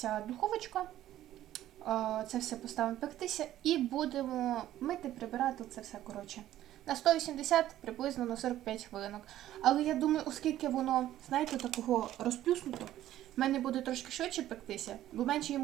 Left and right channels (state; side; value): quieter; left; 13.2 dB